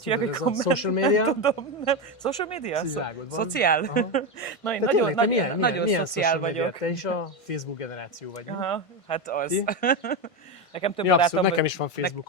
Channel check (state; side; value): late; right; 1.5 ms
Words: hívják, hogy tudod, ez a komment. social media? Nem tudom, nem. Social media? Szociálod van. Szociál? Aha. Na, én De nagyon, tényleg, te milyen nagyon szociál social media? vagyok. Te is a Facebook generáció vagy, nem? Aha, hát az. Ti? Nekem több Ja, abszolút, barátom nekem is van